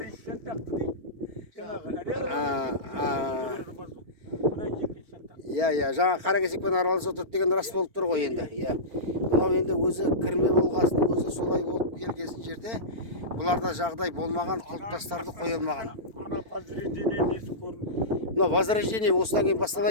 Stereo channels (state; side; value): late; left; 4.4 ms